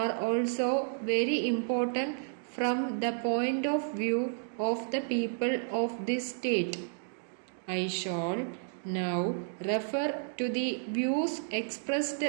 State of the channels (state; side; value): silent; left; digital silence